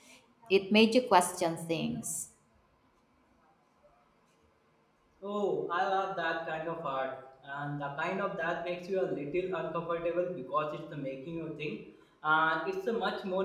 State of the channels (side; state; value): both; identical; correlation 1.00